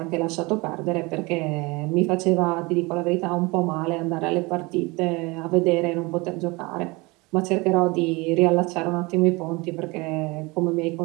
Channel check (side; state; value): left; quieter; 25.1 dB